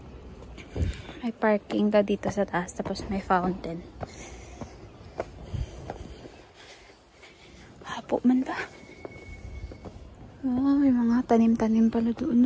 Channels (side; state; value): both; identical; correlation 1.00